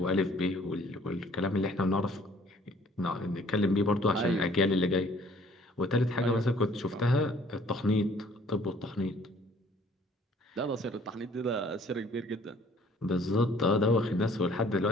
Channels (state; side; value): normal; both; correlation 0.57